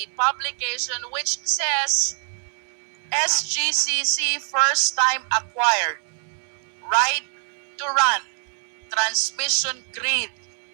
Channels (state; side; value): silent; left; digital silence